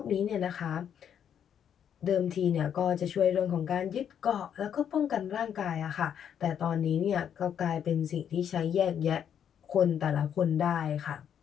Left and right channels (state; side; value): quieter; right; 8.8 dB